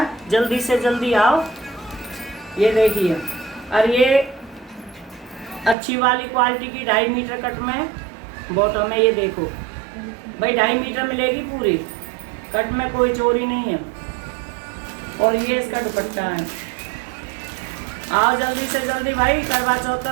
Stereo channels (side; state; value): left; drops out; at 5.8 s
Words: जल्दी से जल्दी आओ। ये देखिए, और ये अच्छी वाली क्वालिटी की 2.5 मीटर कट में बॉटम है। ये देखो भाई 2.5 मीटर मिलेगी पूरी कट में, कोई चोरी नहीं है। और ये इसका दुपट्टा है। आओ जल्दी से जल्दी भाई, करवा चौथ का